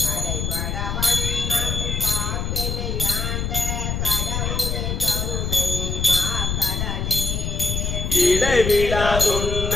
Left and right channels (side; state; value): left; noise; rumble, 2 dB below the sound